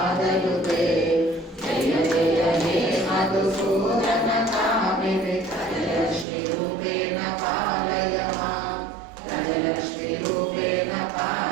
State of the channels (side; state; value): left; drops out; at 6.2 s